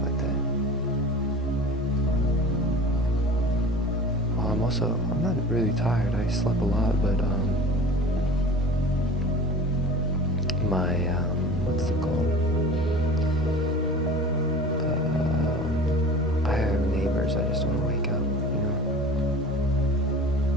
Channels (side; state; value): both; normal; correlation 0.39